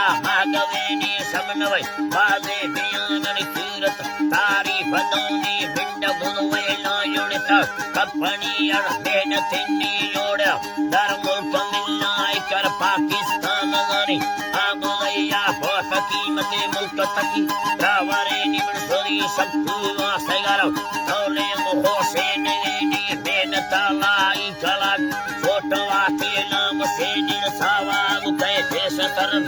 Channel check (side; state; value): both; identical; correlation 1.00